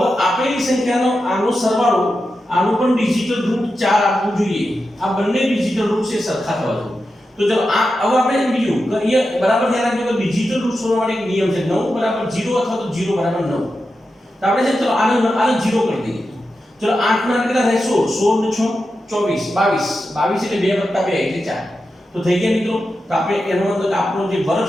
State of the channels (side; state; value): both; normal; correlation 0.90